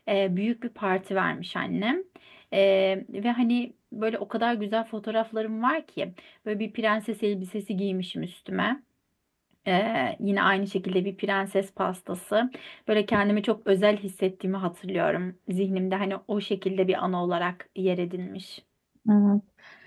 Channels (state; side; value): identical; both; correlation 1.00